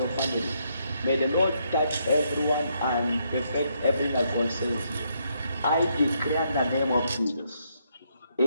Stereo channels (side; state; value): both; inverted; correlation -0.75